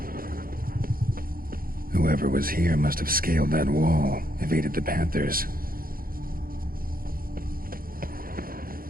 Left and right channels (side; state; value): left; late; 0.42 ms